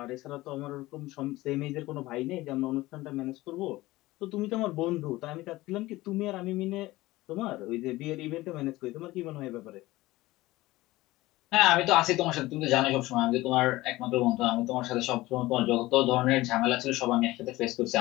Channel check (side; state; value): right; quieter; 18.5 dB